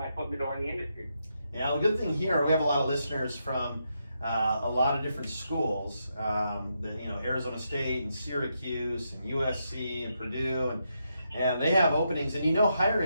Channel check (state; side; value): inverted; both; correlation -0.82